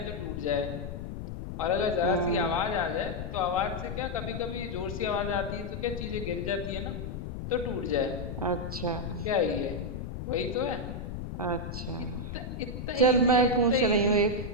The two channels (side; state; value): left; noise; rumble, 6 dB below the sound